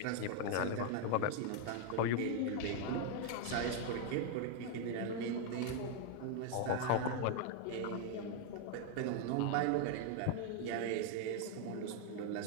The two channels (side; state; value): both; different; correlation 0.00